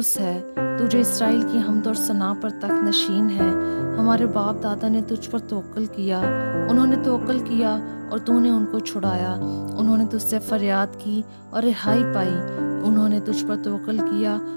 ہے، تو جو اسرائیل کی حمد اور ثنا پر تخت نشین ہے۔ ہمارے باپ دادا نے تجھ پر توکل کیا، انہوں نے توکل کیا اور تو نے ان کو چھڑایا۔ انہوں نے تجھ سے فریاد کی اور رہائی پائی، انہوں نے تجھ پر توکل کیا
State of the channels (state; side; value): inverted; both; correlation -1.00